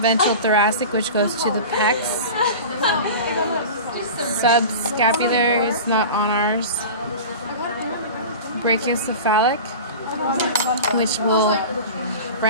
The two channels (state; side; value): inverted; both; correlation -0.33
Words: thoracic, which goes to the pecs. Subscapular is not on ours. Brachiocephalic, which will